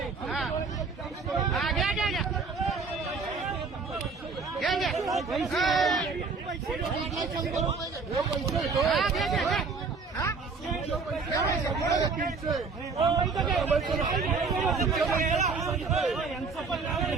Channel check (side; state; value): left; quieter; 4.6 dB